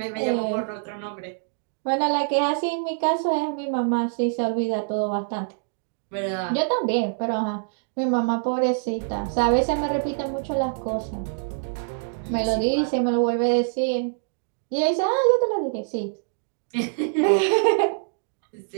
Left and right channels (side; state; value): left; silent; digital silence